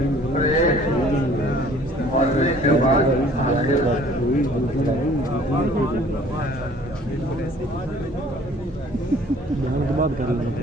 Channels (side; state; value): both; normal; correlation 0.54